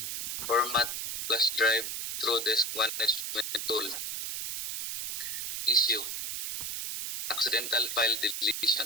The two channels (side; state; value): right; noise; hiss, 3 dB below the sound